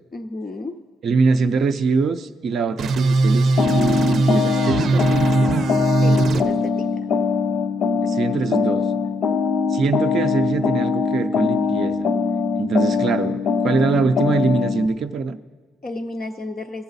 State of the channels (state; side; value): normal; both; correlation 0.76